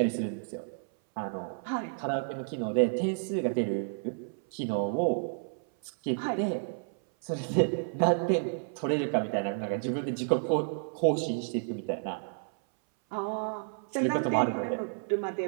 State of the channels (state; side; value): silent; left; 57 dB below the other